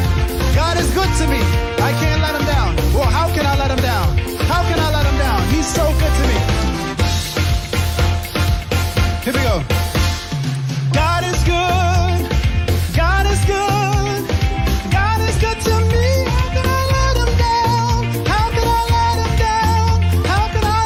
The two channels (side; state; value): both; identical; correlation 1.00